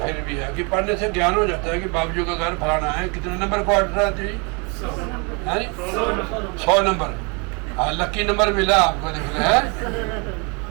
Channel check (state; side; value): quieter; left; 32.5 dB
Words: भी है कि पढ़ने से ज्ञान हो जाता है कि बाबू जी का घर फलाना है। कितने नंबर क्वार्टर आती है? 100 नंबर। हाँ, लक्की नंबर मिला आपको, देख रहे हैं।